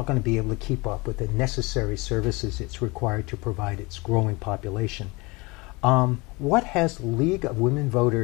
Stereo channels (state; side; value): quieter; right; 25.3 dB